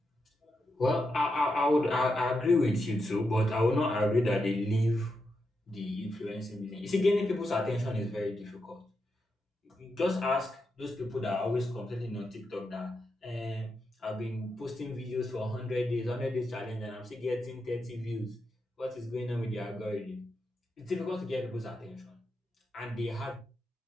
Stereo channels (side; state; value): both; normal; correlation 0.85